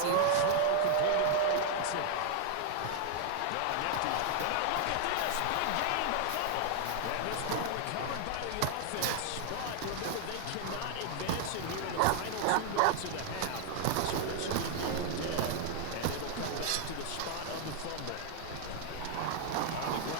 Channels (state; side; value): different; both; correlation 0.00